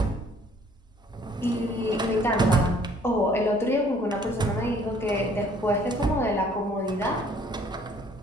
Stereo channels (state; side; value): normal; both; correlation 0.59